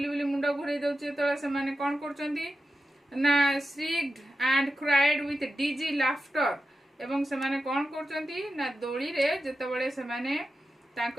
बुली मुंड घुरे दउची तो से माने कोन करचंती ना shrieked and cried with dizzy laughter एवं से माने कोन करचंती ना दोली रे जते बळे से माने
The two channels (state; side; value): normal; both; correlation 0.91